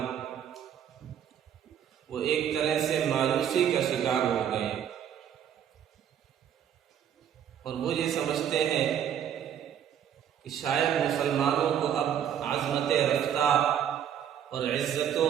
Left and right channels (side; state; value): left; quieter; 9.3 dB